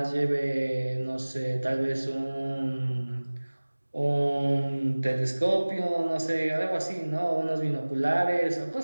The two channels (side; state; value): both; inverted; correlation -1.00